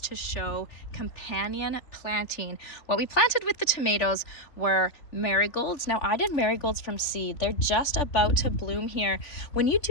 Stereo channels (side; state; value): right; late; 3.4 ms